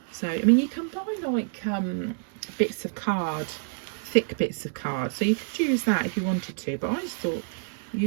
So I mean, you can buy like bits of card, thick bits of card, so you could use that if you wanted to, but I just thought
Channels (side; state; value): left; silent; digital silence